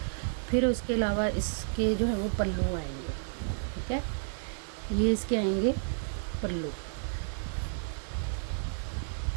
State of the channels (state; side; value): silent; left; digital silence